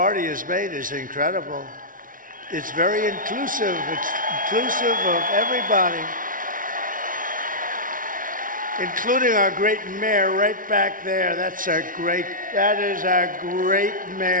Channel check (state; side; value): late; left; 0.39 ms